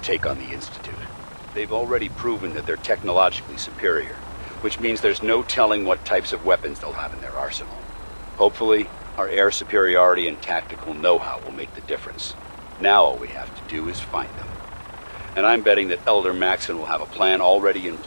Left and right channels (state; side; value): inverted; both; correlation -1.00